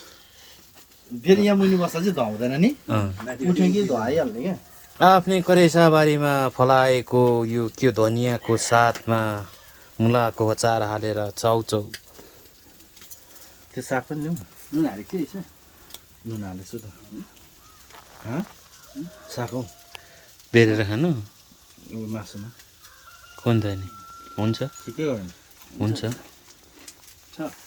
फेरि यहाँ मुनि बस्दा चाहिँ धुवाउँदैन नि उठ्यो कि धुवाइहाल्ने क्या आफ्नै करेसाबारीमा फलाएको यो के धनियाँको साथमा मुलाको अचार हालेर चाउचाउ त्यो साग पनि ल्याउँ नुन हालेको थियो यसो नुन हालेछु त साग हौ बेरेर खानु मासुमा कुन त नि हुन्छ ठिकै हो हुन्छ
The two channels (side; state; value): both; identical; correlation 1.00